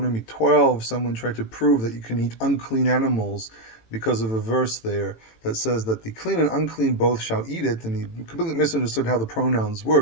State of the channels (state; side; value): late; right; 18 ms